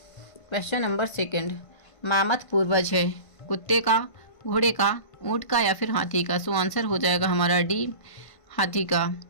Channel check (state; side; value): late; right; 1.5 ms